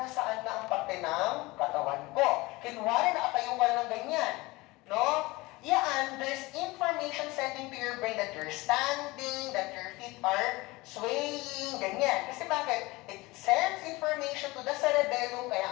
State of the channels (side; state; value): right; quieter; 22.0 dB